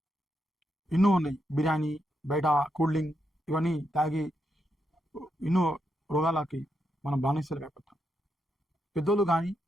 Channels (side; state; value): both; normal; correlation 0.82